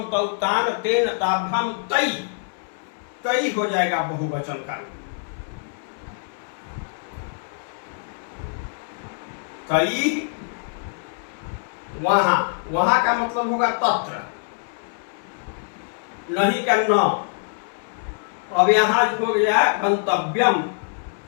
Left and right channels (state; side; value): silent; right; 62 dB below the other